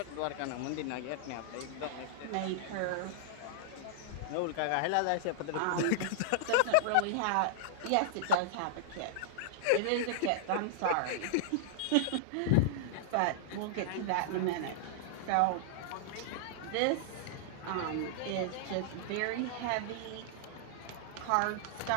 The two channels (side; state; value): both; different; correlation -0.01